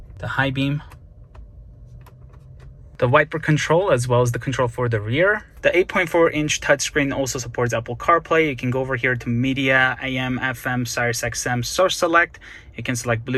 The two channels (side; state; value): both; identical; correlation 1.00